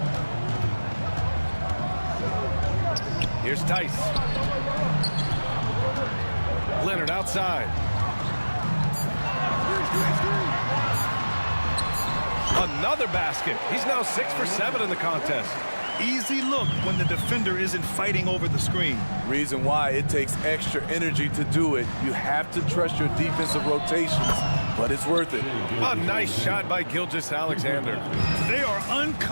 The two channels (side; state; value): both; inverted; correlation -1.00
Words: Here's Tice. Leonard outside. Another basket. He's now 6 for 7 in the contest. Easy look when the defender isn't fighting over the screen. Reason why it takes extra energy to do it. You have to trust your defensive rotations, but it's worth it. A nice shot by Gilgeous-Alexander. They are